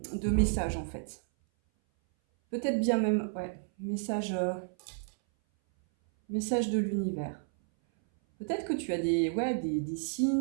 message en fait. Peut-être bien même, message de l'univers. Peut-être que tu as des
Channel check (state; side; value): silent; left; 57 dB below the other